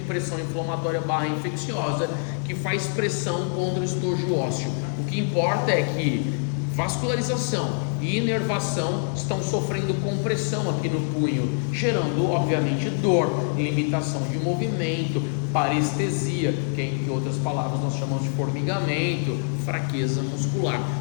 inflamatória / infecciosa que faz pressão contra o estojo ósseo. O que importa é que vascularização e inervação estão sofrendo compressão aqui no punho, gerando obviamente dor, limitação de movimento, parestesia, que em outras palavras nós chamamos de formigamento, fraqueza muscular.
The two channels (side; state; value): right; silent; digital silence